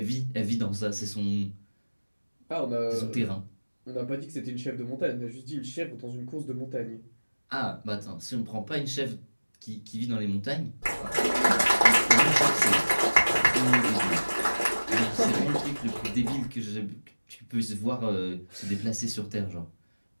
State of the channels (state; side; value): inverted; both; correlation -1.00